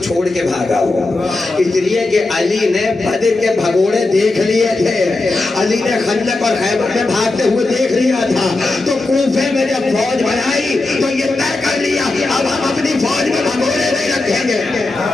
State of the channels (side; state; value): right; quieter; 3.1 dB